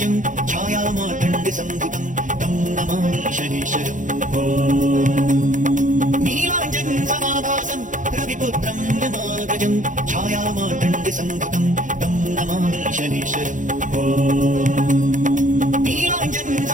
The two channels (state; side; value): late; left; 0.37 ms